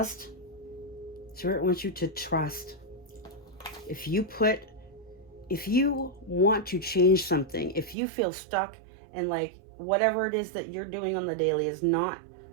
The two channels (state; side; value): drops out; left; at 8.0 s